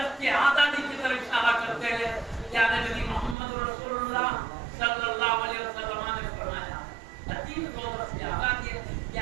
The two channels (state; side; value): drops out; left; at 3.4 s